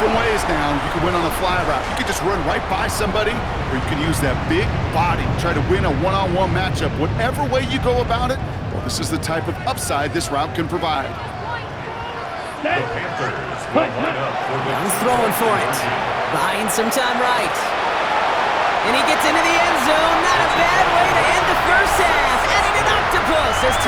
ways now. You can win on a fly route. You could just run right by somebody, or you can use that big body, try to win a one-on-one matchup. Whatever way you go about it, well, this is the type of upside this route can provide. The Panthers will line up for the Young's throwing for it. Buying some time right. And he gets into the end zone. Not a bad way to end the first half. Adding an octopus as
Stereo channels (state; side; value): identical; both; correlation 1.00